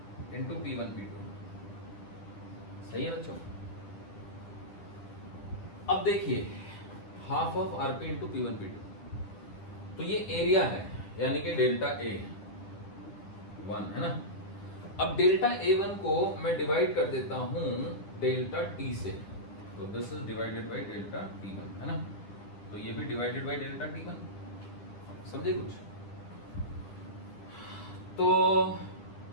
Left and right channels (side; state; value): right; late; 9.9 ms